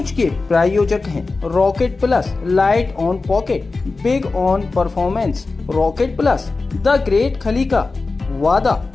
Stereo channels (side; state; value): right; quieter; 3.8 dB